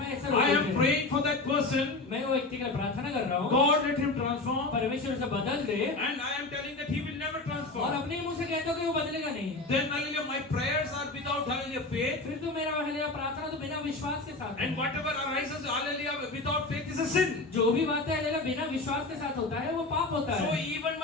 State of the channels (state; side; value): quieter; right; 3.2 dB